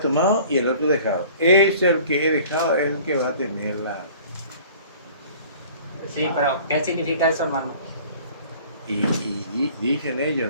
y el otro dejado. Es el que he dejado, es el que va a tener la... Sí, pero ¿qué significa eso, hermano? Y dicen ellos,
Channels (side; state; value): both; inverted; correlation -0.48